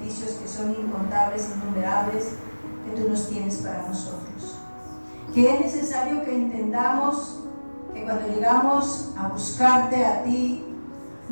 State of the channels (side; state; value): both; inverted; correlation -1.00